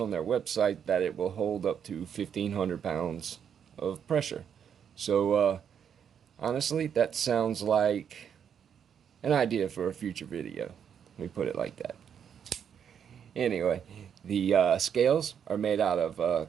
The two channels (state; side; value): quieter; left; 8.0 dB